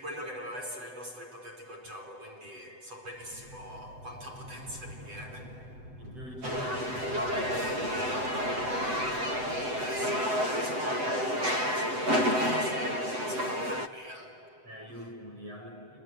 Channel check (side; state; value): left; late; 7.9 ms